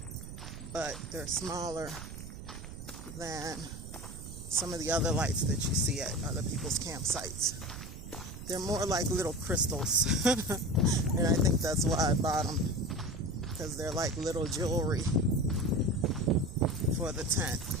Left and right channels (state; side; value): noise; right; rumble, 11 dB below the sound